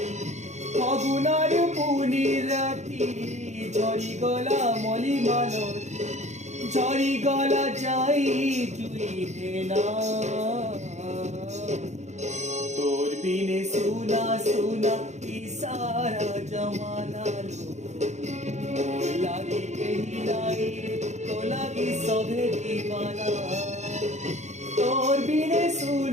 ফাগুনার পুনি রাতি ঝরি গলা মলি মালতি ঝরি গলা যাই তুই না তোর বিনে সুনা সুনা ইসারা জমানা লো लागी कहीं लाई तो लागी सभे दीवाना तोर बिने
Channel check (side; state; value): left; late; 0.33 ms